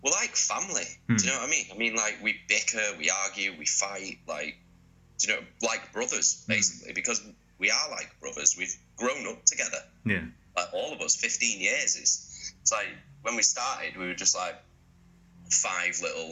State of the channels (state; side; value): identical; both; correlation 1.00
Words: we're like family. Do you know what I mean? I mean, like, we bicker, we argue, we fight, like, do you know, like brothers, basically, because we are like brothers. We've grown up together. Yeah. Like, all of us, 15 years. It's like, when we started, we were just like 5